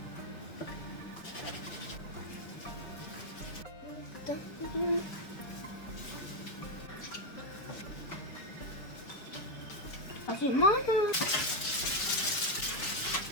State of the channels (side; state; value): right; late; 5.2 ms